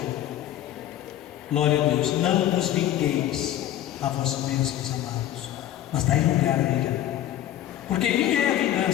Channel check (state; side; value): quieter; right; 12.5 dB